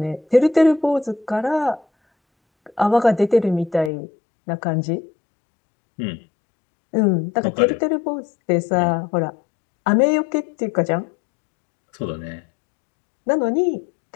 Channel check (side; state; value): right; drops out; at 3.9 s